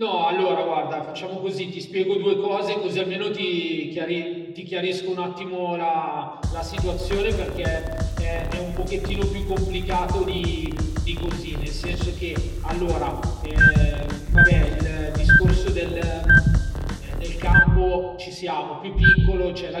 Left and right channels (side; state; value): both; identical; correlation 1.00